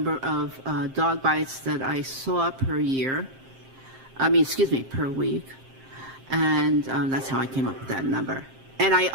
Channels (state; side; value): late; left; 7.6 ms